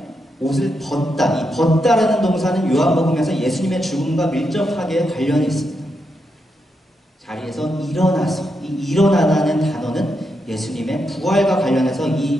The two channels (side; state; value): both; normal; correlation 0.83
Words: 옷을 벗다. 이 벗다라는 동사는 요한복음에서 예수님의 죽음과 밀접하게 관련이 있습니다. 자리에서 일어나서, 이 일어나라는 단어는 예수님의 부활과 관련해서